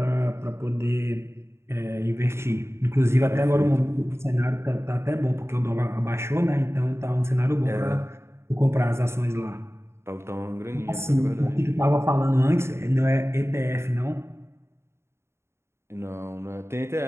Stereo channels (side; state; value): left; late; 0.13 ms